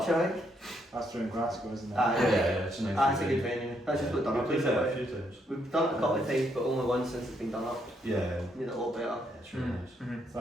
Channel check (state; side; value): normal; both; correlation 0.74